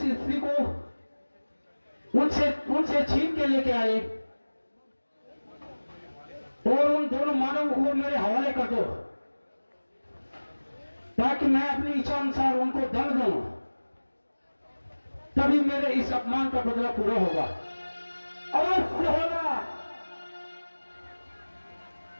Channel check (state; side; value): inverted; both; correlation -1.00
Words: स्त्री को उनसे छीन के लेके आए और उन दोनों मानवों को मेरे हवाले कर दो, ताकि मैं अपनी इच्छा अनुसार उनको दंड दूं। तभी मेरे इस अपमान का बदला पूरा होगा। अवश्य होगा।